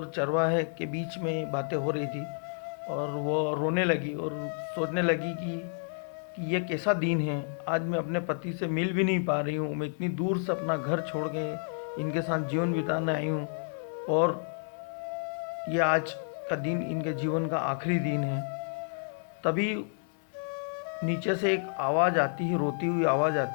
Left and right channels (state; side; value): silent; right; 58 dB below the other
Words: चरवाहे के बीच में बातें हो रही थी। और वो रोने लगी और सोचने लगी कि ये कैसा दिन है, आज मैं अपने पति से मिल भी नहीं पा रही हूँ, मैं इतनी दूर से अपना घर छोड़ के इनके साथ जीवन बिताने आई हूँ और ये आज का दिन इनके जीवन का आखिरी दिन है। तभी नीचे से एक आवाज़ आती है, रोती हुई आवाज़